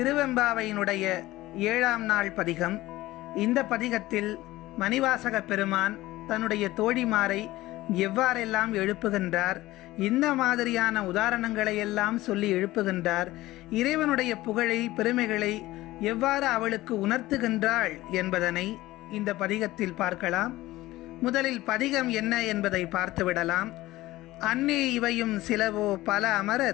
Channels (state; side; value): quieter; right; 17.4 dB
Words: 7ஆம் நாள் பதிகம். இந்த பதிகத்தில் மணிவாசக பெருமான் தன்னுடைய தோழிமாரை எவ்வாறெல்லாம் எழுப்புகின்றார், இந்த மாதிரியான உதாரணங்களை எல்லாம் சொல்லி எழுப்புகின்றார், இறைவனுடைய புகழை பெருமைகளை எவ்வாறு அவளுக்கு உணர்த்துகின்றாள் என்பதனை இந்த பதிகத்தில் பார்க்கலாம். முதலில் பதிகம் என்ன என்பதை பார்த்துவிடலாம். அன்னே இவையும் சிலவோ பல